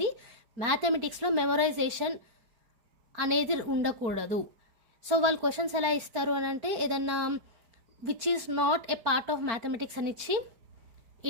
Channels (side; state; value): left; late; 4.4 ms